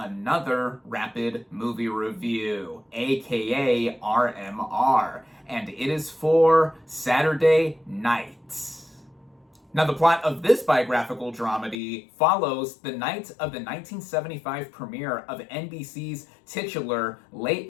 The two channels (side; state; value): right; drops out; at 11.8 s